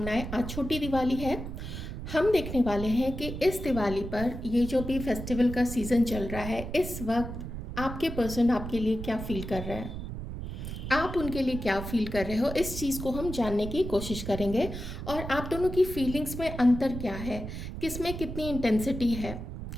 आज छोटी दिवाली है। हम देखने वाले हैं कि इस दिवाली पर ये जो भी फेस्टिवल का सीज़न चल रहा है, इस वक्त आपके पर्सन आपके लिए क्या फील कर रहे हैं, आप उनके लिए क्या फील कर रहे हो, इस चीज़ को हम जानने की कोशिश करेंगे। और आप दोनों की फीलिंग्स में अंतर क्या है, किस में कितनी इंटेंसिटी है,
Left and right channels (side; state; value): right; noise; rumble, 7 dB below the sound